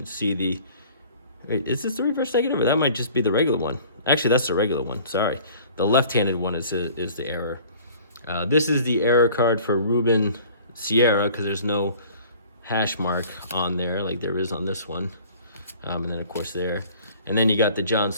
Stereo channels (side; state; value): both; inverted; correlation -0.49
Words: see, is this the reverse negative, or that might just be the regular one? Actually, that's the regular one. Sorry, the left-handed one is the error. This is the error card for Ruben Sierra because there's no hash mark on there like there is on this one, and then of course there, and then you got the John